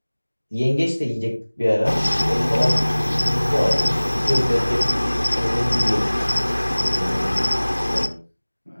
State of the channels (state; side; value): inverted; both; correlation -1.00